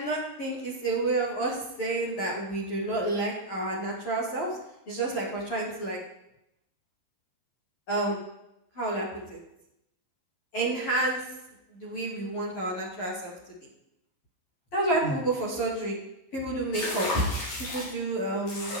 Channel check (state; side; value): late; right; 11 ms